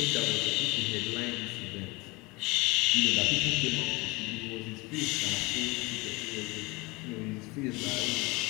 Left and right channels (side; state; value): right; quieter; 24.7 dB